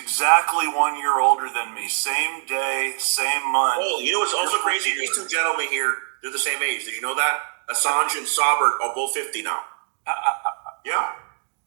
1 year older than me. Same day, same month. Oh, you know what's also crazy? These two gentlemen here, they're the same age. Did you know that? Assange and Saber are both 50 now. Yeah.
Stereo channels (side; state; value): left; silent; digital silence